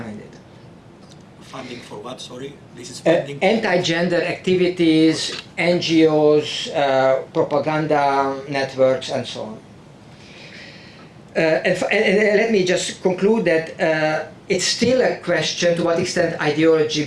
it. Funding for what, sorry? This is funding anti-gender activities, NGOs, propaganda networks, and so on. And let me just conclude that it's still a question to what extent ideology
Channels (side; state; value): both; identical; correlation 1.00